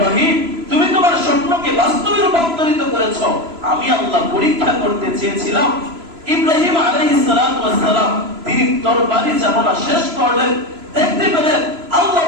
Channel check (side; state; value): left; late; 3.0 ms